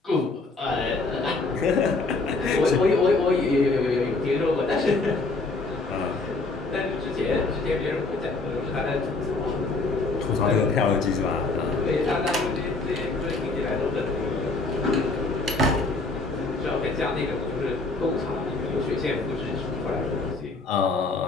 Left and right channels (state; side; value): quieter; right; 3.5 dB